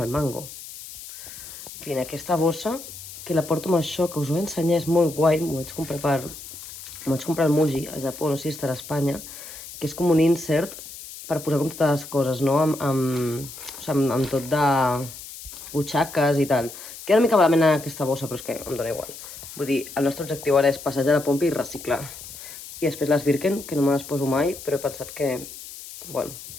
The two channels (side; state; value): left; noise; hiss, 13 dB below the sound